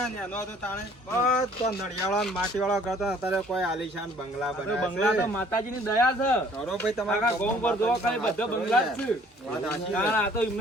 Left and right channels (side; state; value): both; normal; correlation 0.57